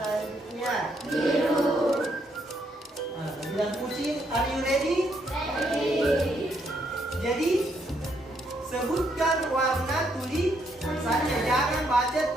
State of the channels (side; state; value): both; normal; correlation 0.74